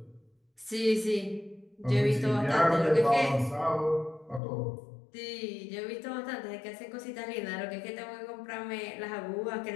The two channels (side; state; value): right; drops out; at 4.4 s